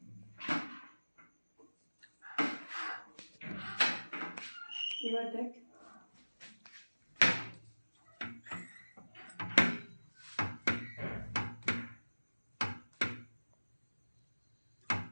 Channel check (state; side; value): inverted; both; correlation -1.00